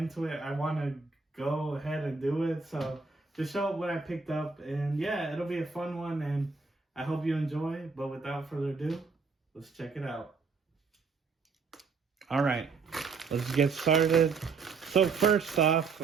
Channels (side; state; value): left; quieter; 4.7 dB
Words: it, I want to go ahead and do it. So just show what I picked up, and yeah, it'll be a fun one, and I hope you enjoy. But without further ado, let's check it out. All right, let's get started. So first off,